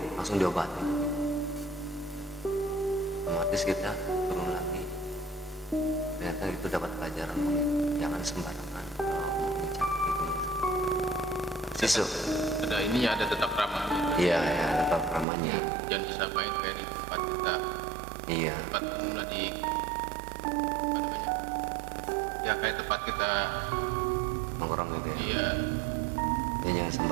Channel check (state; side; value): drops out; left; at 15.2 s